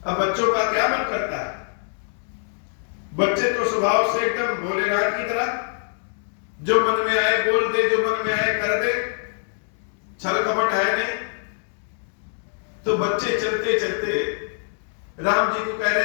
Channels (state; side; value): silent; right; digital silence